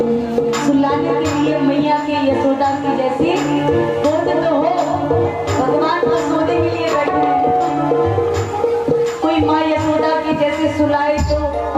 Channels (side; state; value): both; identical; correlation 1.00